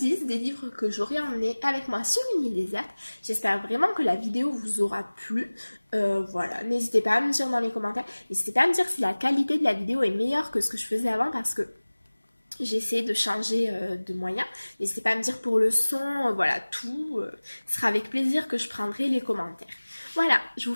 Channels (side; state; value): both; inverted; correlation -1.00